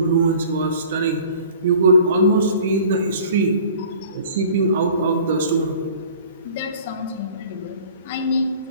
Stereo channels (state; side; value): inverted; both; correlation -0.47